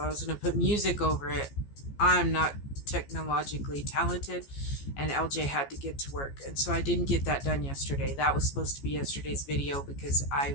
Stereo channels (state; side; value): late; right; 14 ms